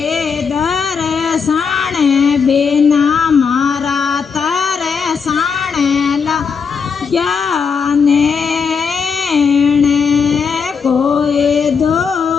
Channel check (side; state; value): right; quieter; 5.9 dB